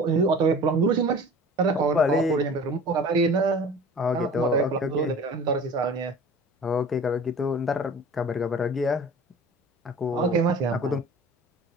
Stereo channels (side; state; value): both; normal; correlation 0.42